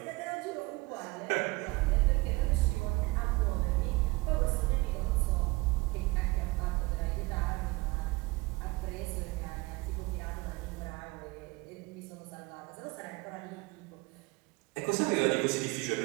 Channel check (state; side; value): quieter; left; 23.6 dB